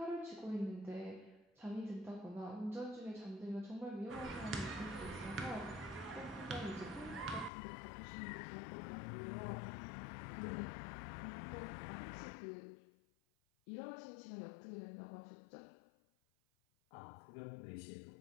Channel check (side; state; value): right; drops out; at 7.5 s